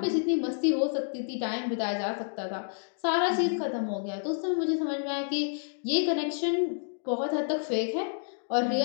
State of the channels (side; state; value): right; silent; digital silence